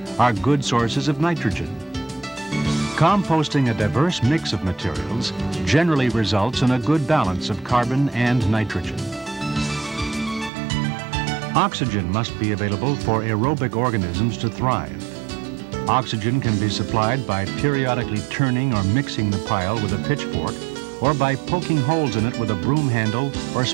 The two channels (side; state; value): left; drops out; at 10.5 s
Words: are good sources of nitrogen. Composting a diverse mix of materials generally results in a good balance of carbon and nitrogen. Oxygen must be available for aerobic organisms to thrive. Oxygen can be supplied by periodically turning or mixing the pile with a pitchfork or by poking holes in it with a broom handle or